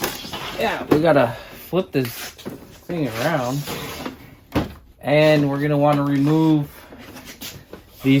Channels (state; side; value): identical; both; correlation 1.00